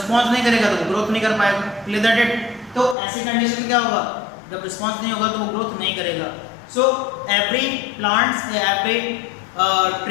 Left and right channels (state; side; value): drops out; right; at 3.0 s